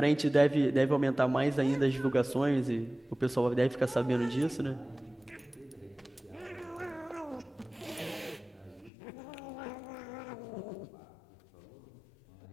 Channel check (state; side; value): drops out; right; at 8.9 s